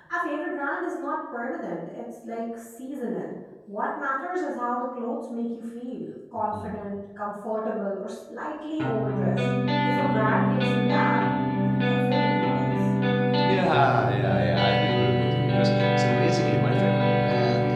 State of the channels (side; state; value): both; identical; correlation 1.00